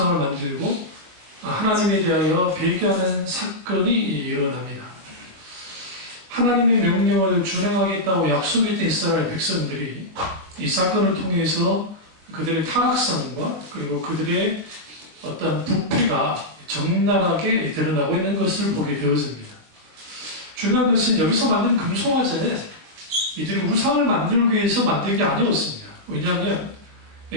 만들고 하나님에 대하여 배교하는 사건이 일어납니다. 하나님의 명령을 준행하겠다고 약속했던 이스라엘 백성들이 이 사건을 통해서 그들의 타락성과 그리고 그들의 어떤 부패가 적나라하게 드러나고 있는 것을 보게 되어집니다. 중요한 것은 여기서 만든 금송아지는 이들이 우상을 만들기 위해서 만든 게 아니었습니다. 왜냐하면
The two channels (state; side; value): late; left; 21 ms